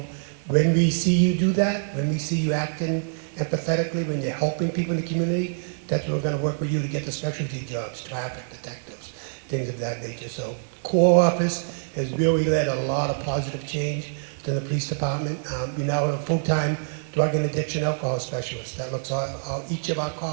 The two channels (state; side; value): silent; left; digital silence